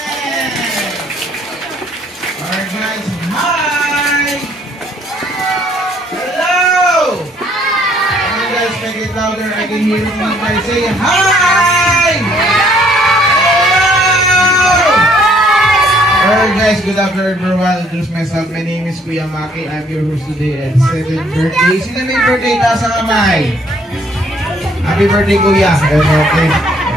Alright, guys. Hi! Hello! Hi! You guys make it louder. I can hear you guys say hi! Alright guys, good afternoon everyone. I'll introduce myself. My name is Kuya Maki. I'm your host today at 7th birthday. Sino may birthday? Taas ang kamay. Happy birthday Kuya. Okay.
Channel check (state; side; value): normal; both; correlation 0.64